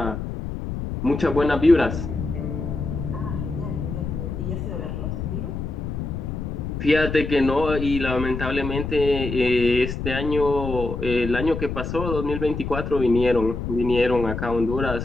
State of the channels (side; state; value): left; noise; rumble, 5 dB below the sound